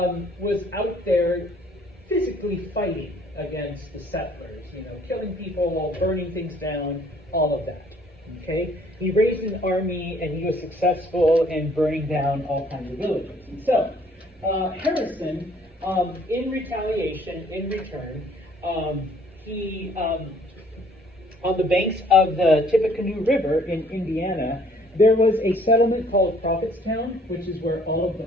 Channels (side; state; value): both; normal; correlation 0.60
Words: was out there physically fighting against the settlers, killing people, burning things down, all of that. Okay? He raised an army and he was successful in burning down all kinds of villages. So, Harrison, in retaliation, in return, he, on the banks of the Tippecanoe River in Indiana, there was a settlement called Prophetstown, which is where all of the